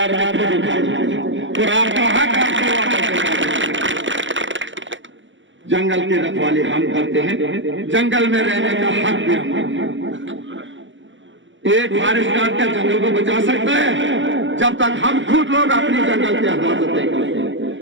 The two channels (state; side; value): late; left; 0.55 ms